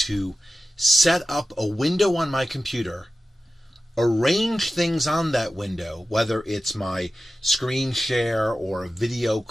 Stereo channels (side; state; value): both; normal; correlation 0.94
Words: set up a window on my computer, arrange things on that window, whether it's my screen share or a video